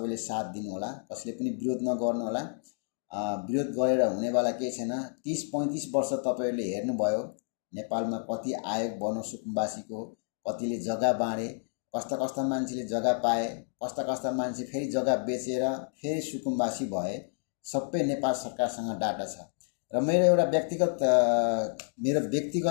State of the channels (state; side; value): silent; right; digital silence